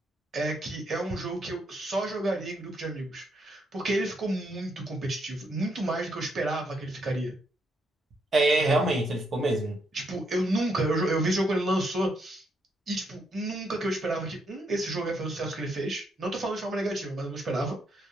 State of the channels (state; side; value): normal; both; correlation 0.76